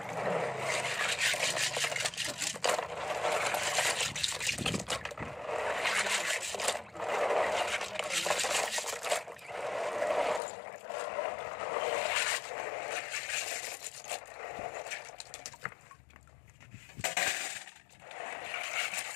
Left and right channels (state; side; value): drops out; right; at 10.4 s